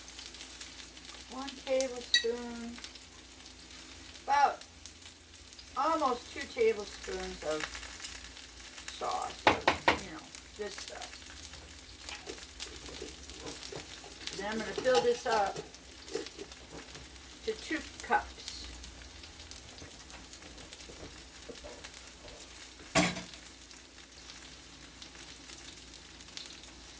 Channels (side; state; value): both; identical; correlation 1.00